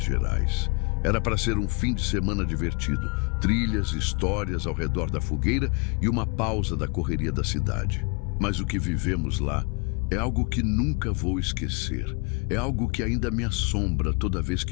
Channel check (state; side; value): quieter; right; 32.2 dB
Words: Gerais. Era para ser um fim de semana divertido, trilhas, histórias ao redor da fogueira e uma pausa da correria da cidade. Mas o que vivemos lá é algo que nunca vou esquecer. É algo que ainda me assombra toda vez